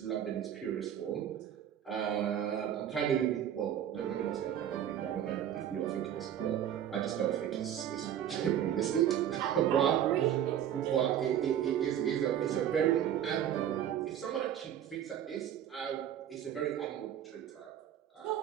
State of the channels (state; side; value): quieter; left; 10.2 dB